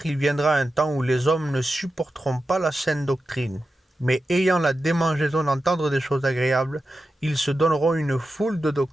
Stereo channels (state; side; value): normal; both; correlation 0.91